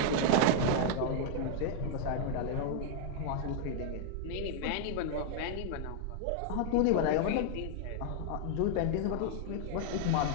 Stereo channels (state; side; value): different; both; correlation 0.00